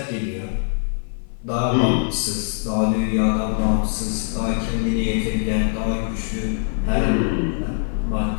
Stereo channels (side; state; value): right; silent; 57 dB below the other